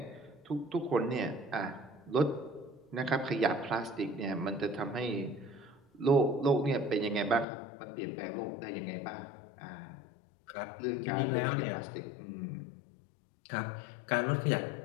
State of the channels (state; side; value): drops out; right; at 7.5 s